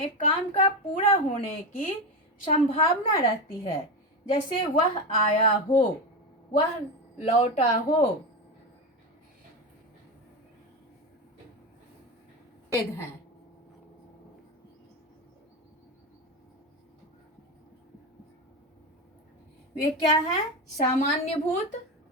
काम का पूरा होने की संभावना रहती है। जैसे वह आया हो, वह लौटा हो। भेद हैं। वे क्या है? सामान्य भूत,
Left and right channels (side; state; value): both; normal; correlation 0.16